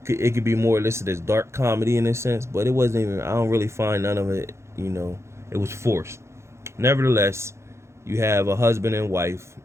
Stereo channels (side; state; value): left; late; 0.13 ms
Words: it could be more listed as dark comedy in a sense, but it wasn't even. I don't really find none of it. It was forced. Nevertheless, you have a husband and wife